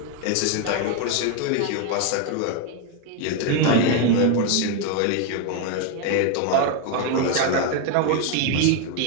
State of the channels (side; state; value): both; different; correlation 0.01